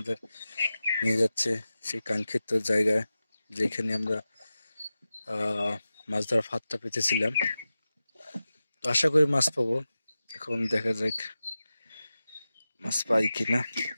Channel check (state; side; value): inverted; both; correlation -0.94